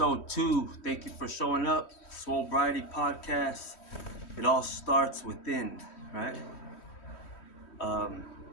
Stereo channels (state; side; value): late; right; 3.1 ms